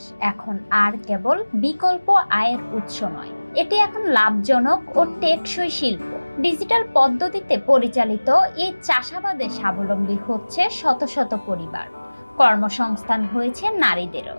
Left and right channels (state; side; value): inverted; both; correlation -1.00